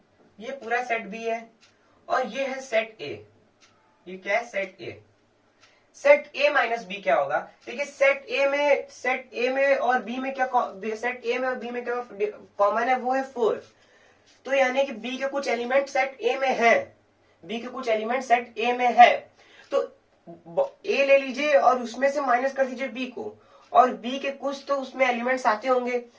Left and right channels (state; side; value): identical; both; correlation 1.00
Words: ये पूरा सेट बी है, और ये है सेट ए। ये क्या है? Set A. Set A minus B क्या होगा? देखिए सेट ए में और बी में क्या, सेट ए में और बी में क्या कॉमन है? वो है 4। तो यानी कि बी के कुछ एलिमेंट सेट ए में है, बी के कुछ एलिमेंट सेट ए में है। तो ए ले लीजिए और उसमें से माइनस कर दीजिए बी को, और बी के कुछ तो उसमें एलिमेंट्स आते होंगे,